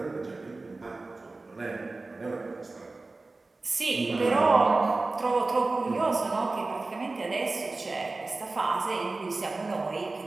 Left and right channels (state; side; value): quieter; left; 3.4 dB